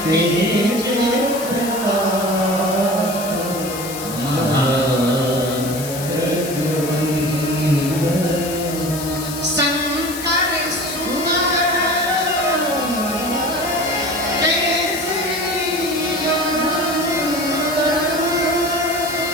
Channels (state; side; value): noise; left; hiss, 10 dB below the sound